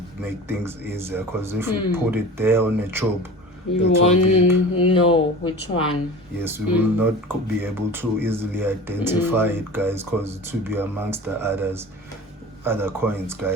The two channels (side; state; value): both; normal; correlation 0.36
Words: make things easier, because if we put it there on a tube, you won't know which one. Yes, we will not be able to easily identify it, guys, because it will be amongst the other coins,